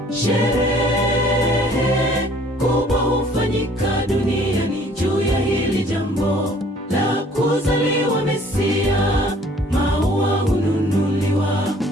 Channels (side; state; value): both; normal; correlation 0.56